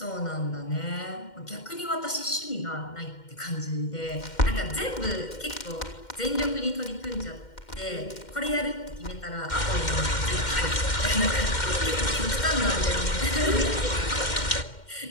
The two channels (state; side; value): late; right; 2.1 ms